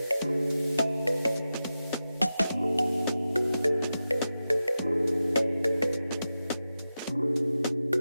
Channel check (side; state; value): both; inverted; correlation -0.92